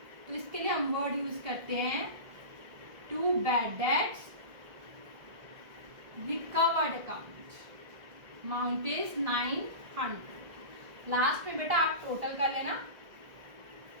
तो इसके लिए हम वर्ड यूज करते हैं to bad debts recovered account, amount is 900। Last में बेटा आप टोटल कर लेना।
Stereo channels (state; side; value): late; left; 1.6 ms